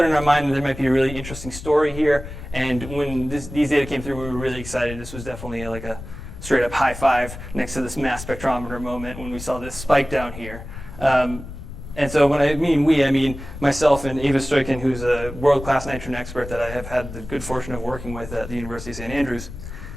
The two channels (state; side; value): noise; left; rumble, 12 dB below the sound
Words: in our mind that there might be a really interesting story here. And when these data came through, we were really excited. This was definitely like a straight up high five next to this mass spectrometer moment when we saw this spike down here. And so when I mean we, I mean myself and Eva Stoikin, who's a world-class nitrogen expert that I have had the good fortune of working with at the University of St. Andrews.